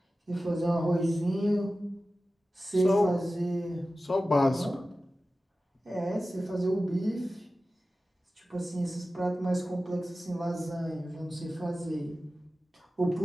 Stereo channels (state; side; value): normal; both; correlation 0.95